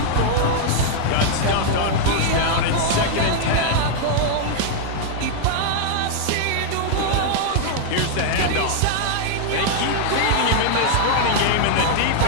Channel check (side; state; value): both; different; correlation 0.00